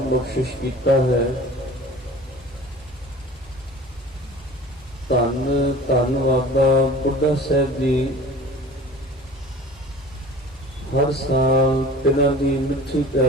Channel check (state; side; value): noise; right; rumble, 24 dB below the sound